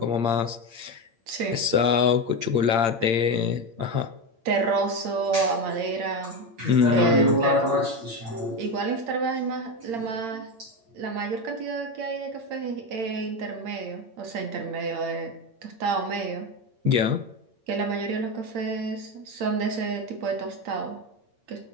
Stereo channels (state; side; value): late; left; 8.8 ms